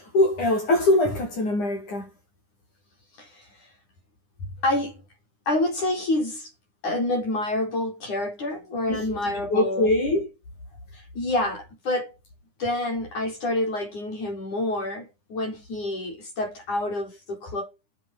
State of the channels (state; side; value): late; right; 9.8 ms